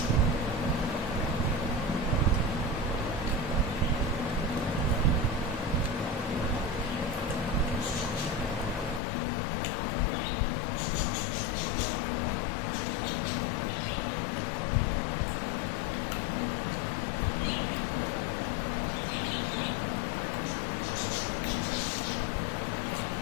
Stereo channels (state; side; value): drops out; right; at 9.0 s